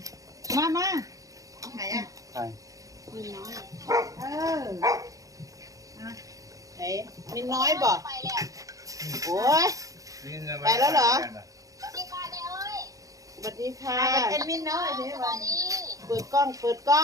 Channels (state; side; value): late; left; 0.17 ms